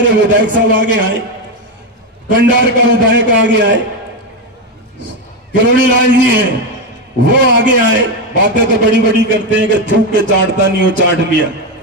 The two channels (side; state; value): both; normal; correlation 0.10